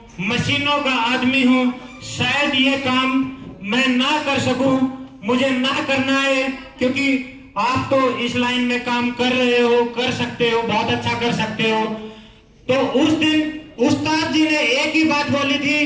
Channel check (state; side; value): identical; both; correlation 1.00